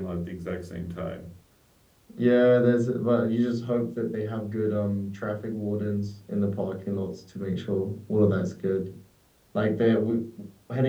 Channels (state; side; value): identical; both; correlation 1.00